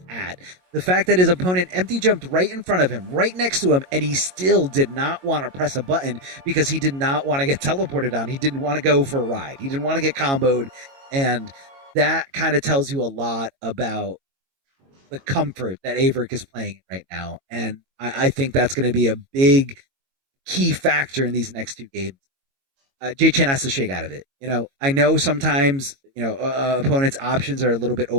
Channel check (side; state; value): left; late; 22 ms